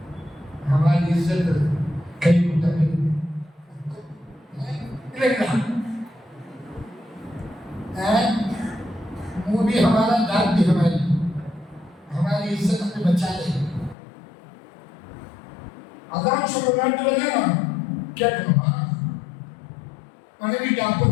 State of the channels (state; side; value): drops out; right; at 14.0 s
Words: हमारी इज्जत कहीं होता नहीं मुंह भी हमारा, दांत भी हमारी इज्जत हमें बचा ले। अजान शुरू करने लगे ना, क्या करूँगा? मैंने भी